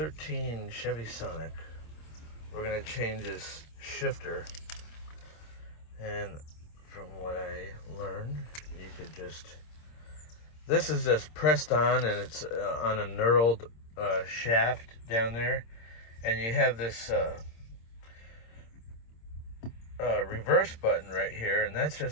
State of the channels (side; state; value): right; late; 26 ms